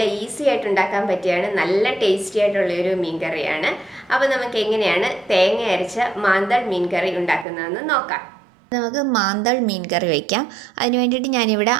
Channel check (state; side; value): drops out; left; at 7.5 s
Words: ഈസി ആയിട്ട് ഉണ്ടാക്കാൻ പറ്റിയാണ്, നല്ല ടേസ്റ്റി ആയിട്ടുള്ള ഒരു മീൻ കറിയാണ്. അപ്പോൾ നമുക്ക് എങ്ങനെയാണ് തേങ്ങ അരച്ച മാന്തൾ മീൻ കറി ഉണ്ടാക്കുന്നതെന്ന് നോക്കാം. നമുക്ക് മാന്തൾ മീൻ കറി വയ്ക്കാം. അതിന് വേണ്ടിയിട്ട് ഞാനിവിടെ